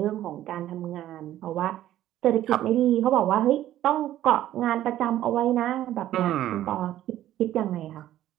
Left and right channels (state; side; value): quieter; left; 13.1 dB